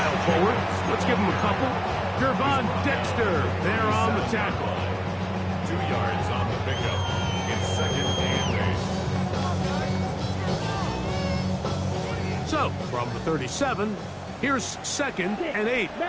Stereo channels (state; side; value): identical; both; correlation 1.00